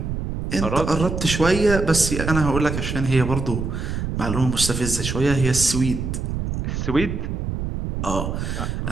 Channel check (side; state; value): right; noise; rumble, 3 dB below the sound